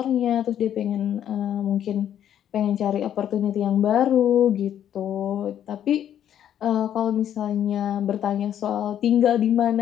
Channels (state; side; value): quieter; right; 10.2 dB